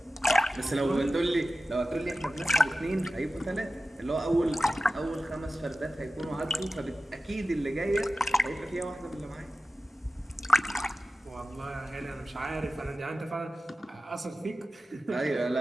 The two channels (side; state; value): both; normal; correlation 0.94